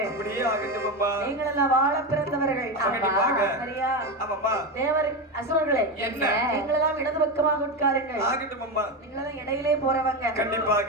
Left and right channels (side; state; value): both; normal; correlation 0.15